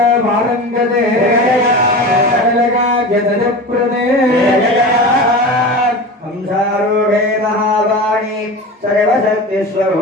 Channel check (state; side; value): normal; both; correlation 0.30